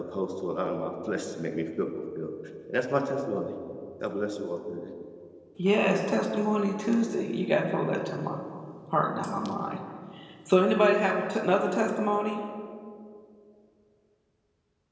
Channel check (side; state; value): both; identical; correlation 1.00